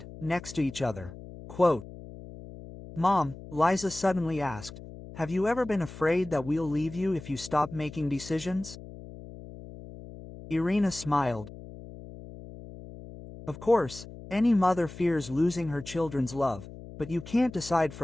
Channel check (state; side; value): noise; left; hum, 15 dB below the sound